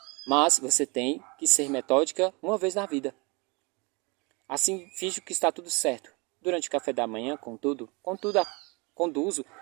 mas você tem que ser metódica uma vez na vida. Assim, finjo que está tudo certo. Durante o café da manhã, contudo, conduzo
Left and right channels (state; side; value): quieter; left; 28.9 dB